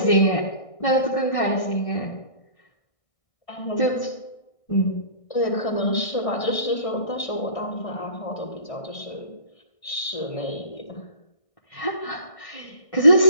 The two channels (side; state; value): right; late; 1.6 ms